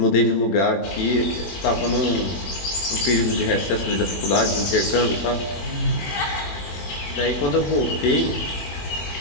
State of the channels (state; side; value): late; right; 21 ms